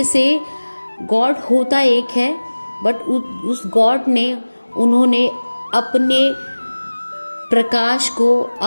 से गॉड होता एक है, बट उस गॉड ने उन्होंने अपने प्रकाश को,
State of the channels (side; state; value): both; inverted; correlation -1.00